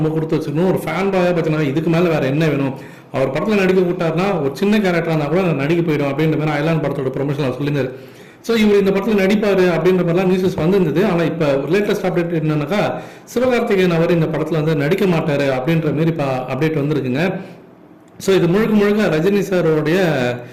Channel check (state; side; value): identical; both; correlation 1.00